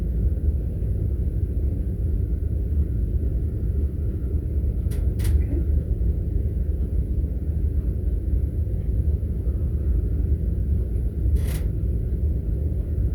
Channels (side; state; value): both; identical; correlation 1.00